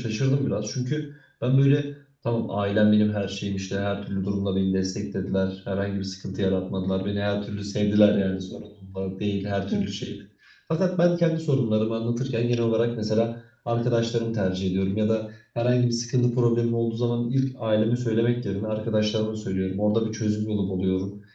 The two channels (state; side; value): identical; both; correlation 1.00